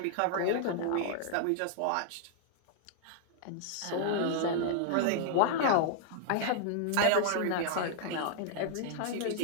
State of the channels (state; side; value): different; both; correlation -0.01